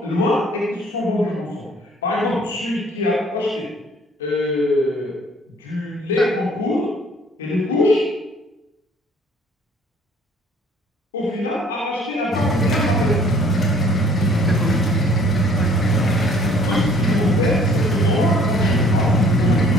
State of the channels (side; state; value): both; normal; correlation 0.56